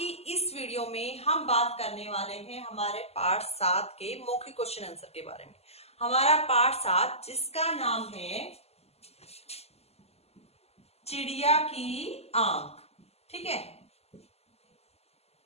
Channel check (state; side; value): late; right; 0.30 ms